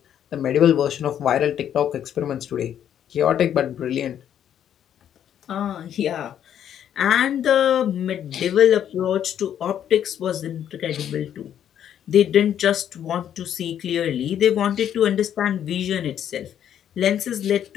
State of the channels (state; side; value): quieter; right; 9.8 dB